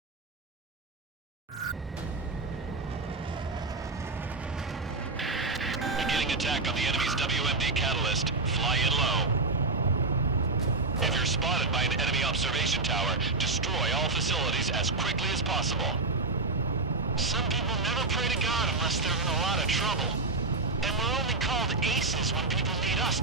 Attack on the enemy's WMD catalyst. Fly in low. If you're spotted by an enemy observation tower, destroy all facilities as quickly as possible. Some people never pray to God unless they're in a lot of trouble. And we're only called aces when people need us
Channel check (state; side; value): quieter; left; 3.4 dB